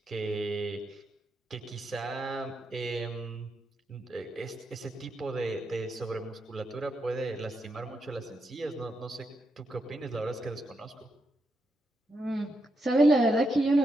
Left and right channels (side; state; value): both; normal; correlation 0.82